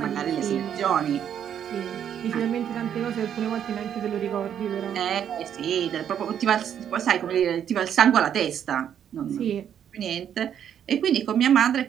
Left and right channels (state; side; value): quieter; left; 9.2 dB